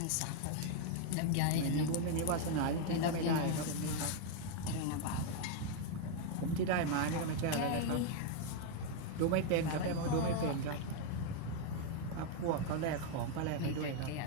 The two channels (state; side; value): different; both; correlation 0.00